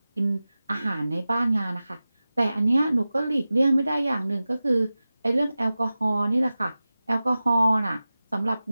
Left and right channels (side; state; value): both; inverted; correlation -0.96